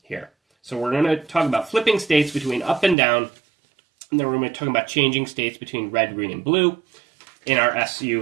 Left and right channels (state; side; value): drops out; left; at 3.0 s